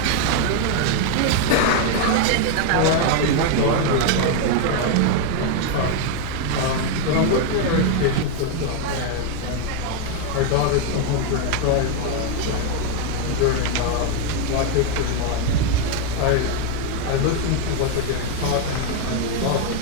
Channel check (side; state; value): both; different; correlation 0.01